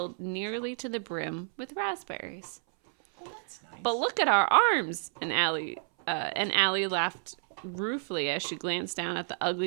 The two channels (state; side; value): silent; left; 58 dB below the other